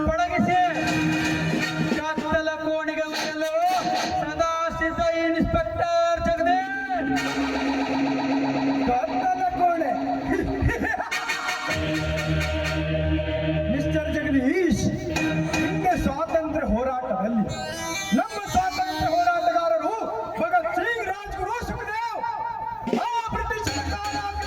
ಪಳಗಿಸಿ ಕತ್ತಲ ಕೋಣಿಗೆ ಒಯ್ಯಲು ಸದಾ ಸಿದ್ಧ ಇನ್ಸ್ಪೆಕ್ಟರ್ ಜಗದೀಶ್. ಕತ್ತಲ ಕೋಣೆ ಮಿಸ್ಟರ್ ಜಗದೀಶ್, ಹಿಂದೆ ಸ್ವಾತಂತ್ರ್ಯ ಹೋರಾಟದಲ್ಲಿ ನಮ್ಮ ಸ್ವಾತಂತ್ರ್ಯ ಹೋರಾಟಗಾರರು ಭಗತ್ ಸಿಂಗ್, ರಾಜ್ಗುರು, ಸುಖದೇವ್ ಆ ಬ್ರಿಟಿಷರ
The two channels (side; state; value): both; identical; correlation 1.00